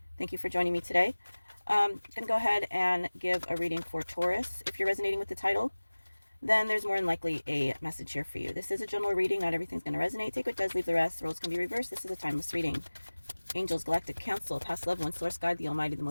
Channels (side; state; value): both; inverted; correlation -1.00